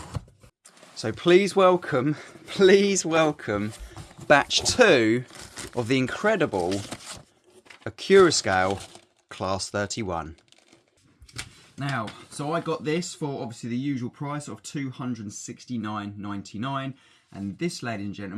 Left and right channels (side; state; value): both; identical; correlation 1.00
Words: So please welcome batch 2 of the incredible Accurascale Class 31. Now, so I got this for obviously the usual price of $269.99, and this, ladies and